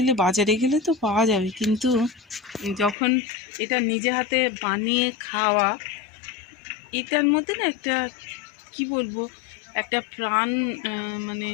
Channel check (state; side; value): drops out; right; at 3.0 s